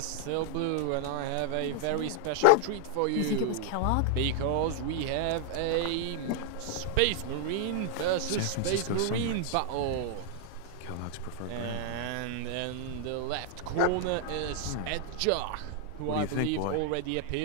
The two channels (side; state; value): both; different; correlation -0.01